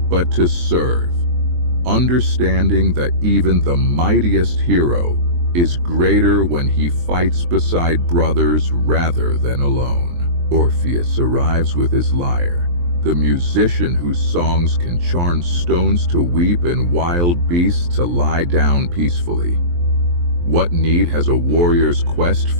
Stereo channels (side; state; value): left; late; 23 ms